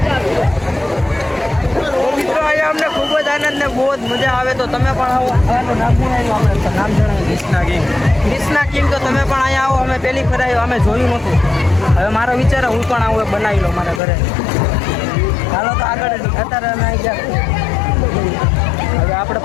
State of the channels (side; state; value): right; drops out; at 14.0 s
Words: બહુ જ મજા આવે તો તમે પણ આવો. નામ જણાવ્યું ક્રિષ્ના કિંગ. તો તમે પણ અહીંયા આવો. અમે પહેલી ફેર આવ્યો. અમે જોયું નહોતું. હવે મારો વિચાર હું પણ આવું બનાવી લો મારા ઘરે. હાલો તો આગળ અત્યારે અમે આવી ગયા. હવે આપણે